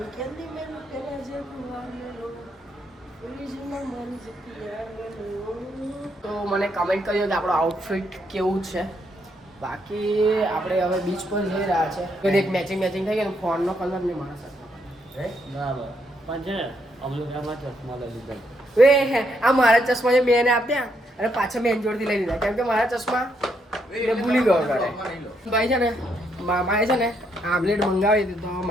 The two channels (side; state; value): both; normal; correlation 0.76